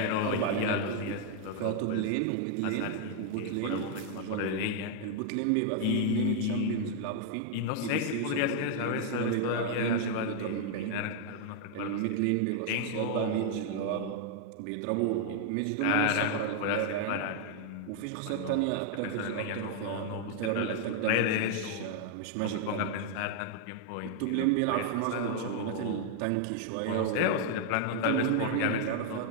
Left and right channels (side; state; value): both; different; correlation 0.00